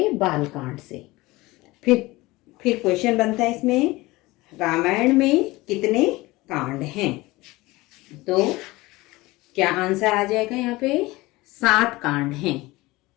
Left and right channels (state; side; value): quieter; right; 20.7 dB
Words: बालकांड से। फिर क्वेश्चन बनता है इसमें, रामायण में कितने कांड हैं? तो क्या आंसर आ जाएगा यहाँ पे? 7 कांड हैं।